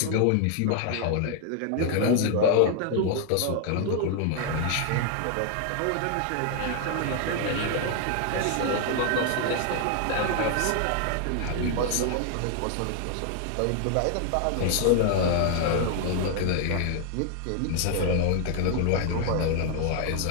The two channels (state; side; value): different; both; correlation 0.00